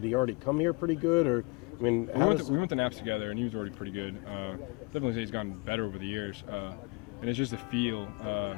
he already come here pretty good, or I mean, we went to Naps together, and he was already pretty good. Definitely say he's gotten better over the years, and it's just a feel.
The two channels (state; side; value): quieter; right; 28.1 dB